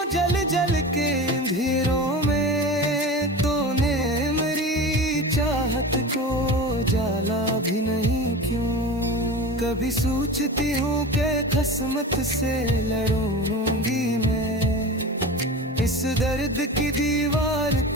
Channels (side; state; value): both; normal; correlation 0.30